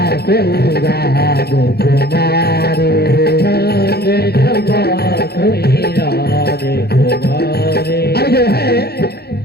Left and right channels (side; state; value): right; late; 0.46 ms